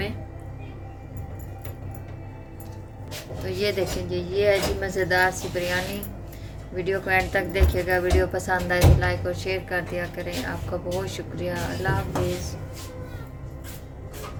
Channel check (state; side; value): identical; both; correlation 1.00